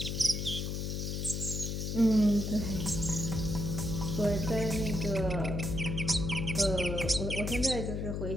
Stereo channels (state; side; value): noise; left; hum, 2 dB below the sound